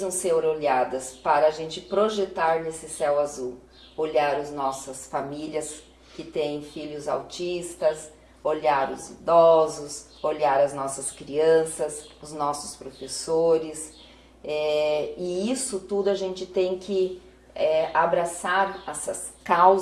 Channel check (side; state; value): both; identical; correlation 1.00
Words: ser olhadas para a gente projetar nesse céu azul. Olhar as nossas famílias que têm filhos autistas, olhar os idosos, olhar as nossas crianças, os nossos professores. E isso tudo a gente tem que abraçar essas